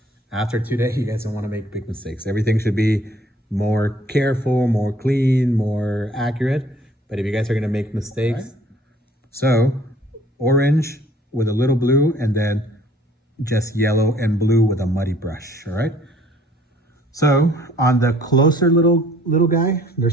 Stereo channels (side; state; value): both; normal; correlation 0.57